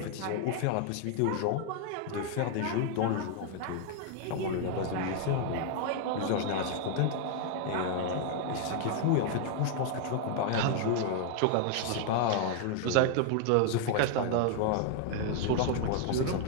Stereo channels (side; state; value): both; different; correlation 0.00